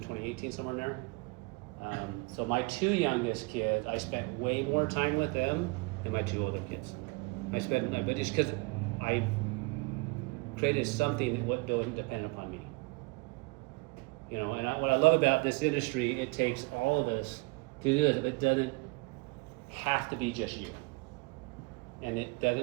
2018, somewhere in there. So my two youngest kids, I spent way more time with them than my two older kids. But just because I created something that wasn't dependent upon me. And what I love about this industry, it takes all of us to do this. It doesn't have to be just you. And it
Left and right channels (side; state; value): left; quieter; 28.0 dB